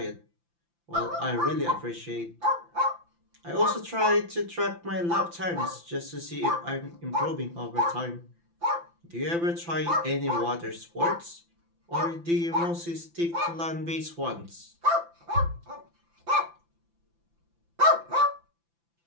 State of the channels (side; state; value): left; late; 5.9 ms